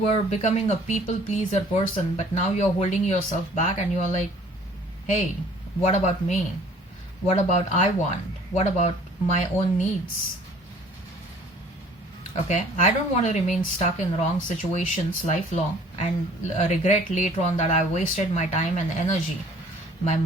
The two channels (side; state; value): both; normal; correlation 0.54